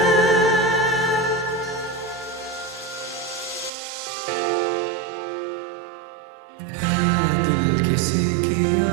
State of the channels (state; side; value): drops out; left; at 3.7 s